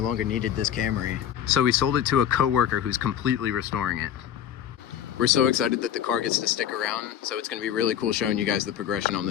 longer needed this Camry. So we sold it to a coworker who's completely restoring it. We're so excited that the car gets to stick around, so it's gonna be really cool showing you guys the progression on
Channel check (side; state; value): right; quieter; 9.8 dB